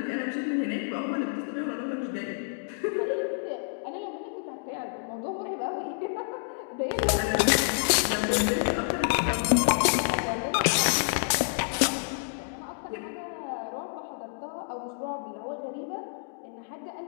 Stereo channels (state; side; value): silent; right; digital silence